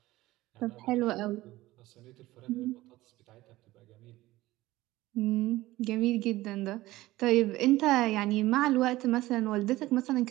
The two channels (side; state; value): left; quieter; 17.5 dB